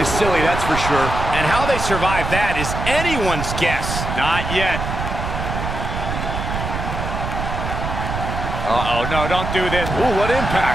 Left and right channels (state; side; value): noise; right; rumble, 4 dB below the sound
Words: silly, that's for sure. And how they survive that is anyone's guess. Not yet. Uh-oh, no, don't do this. Ooh, what